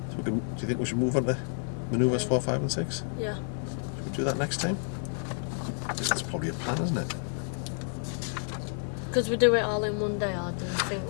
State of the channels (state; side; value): silent; right; 58 dB below the other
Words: So do you think we should move on to manoeuvres 4, 5 and 6? Yeah. Should we do that next time? That's probably a plan, isn't it? Because we do it all in one day, or do you think